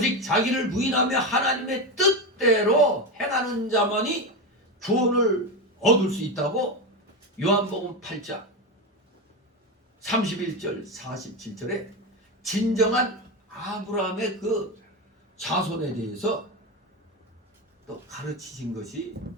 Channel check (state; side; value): normal; both; correlation 0.15